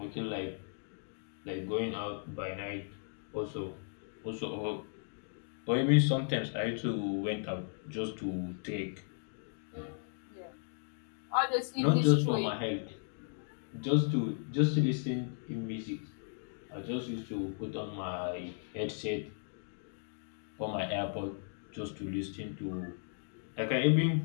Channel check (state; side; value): silent; right; digital silence